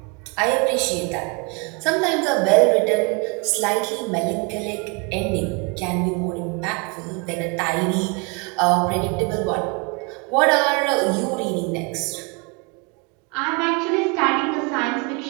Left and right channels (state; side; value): quieter; left; 31.4 dB